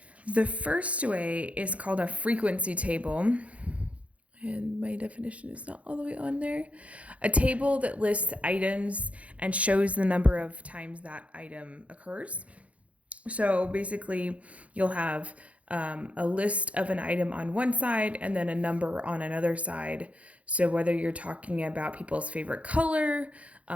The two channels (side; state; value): left; late; 0.065 ms